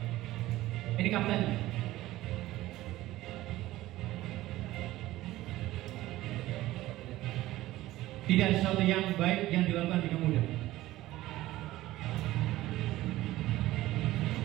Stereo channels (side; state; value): left; quieter; 16.4 dB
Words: Ini kapten. Tidak sesuatu yang baik yang dilakukan dengan mudah.